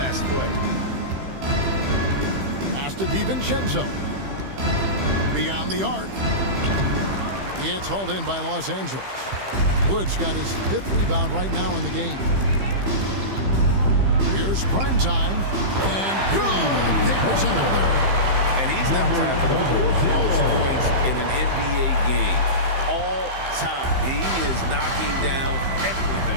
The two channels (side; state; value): left; late; 15 ms